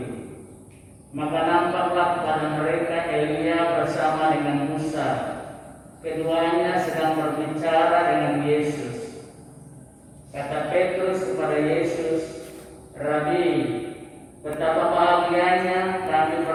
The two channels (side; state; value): both; identical; correlation 1.00